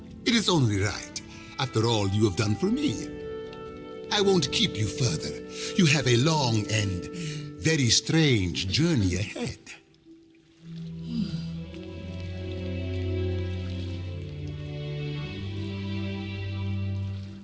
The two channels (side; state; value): both; identical; correlation 1.00